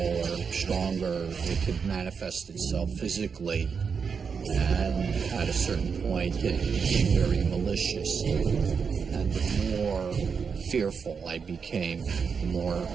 or stronger it could manifest itself physically. And at a certain point, it became very malicious. And the more fearful I became, the more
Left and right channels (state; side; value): quieter; left; 6.0 dB